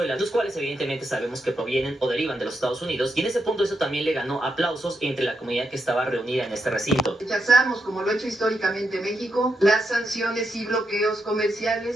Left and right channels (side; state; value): both; normal; correlation 0.83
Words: los cuales evidentemente sabemos que provienen o derivan de los Estados Unidos, y en ese punto eso también le ganó aplausos entre la comunidad que estaba reunida en este recinto. Rechazamos, como lo ha hecho históricamente México, las sanciones y bloqueos